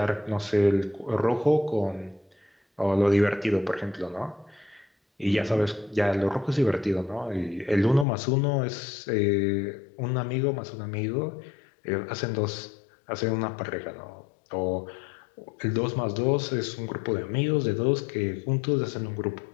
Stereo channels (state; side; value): drops out; right; at 8.1 s